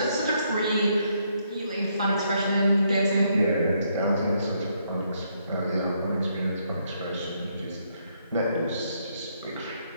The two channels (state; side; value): inverted; both; correlation -0.73